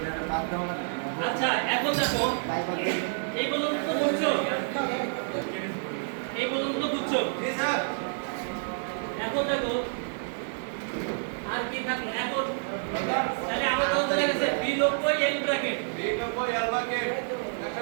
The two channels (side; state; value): left; silent; digital silence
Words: আচ্ছা, এখন দেখো এই পর্যন্ত তো বুঝছো, এখন দেখো আর কি থাকলো। এখন তাহলে আমার তো চলে গেছে B90 এল ব্র্যাকেট,